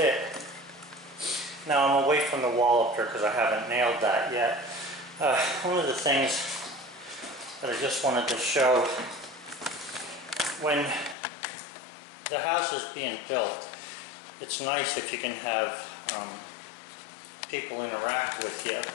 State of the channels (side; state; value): right; drops out; at 11.2 s